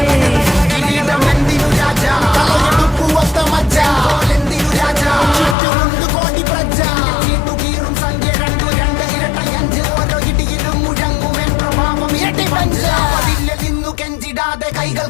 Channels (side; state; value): right; drops out; at 5.6 s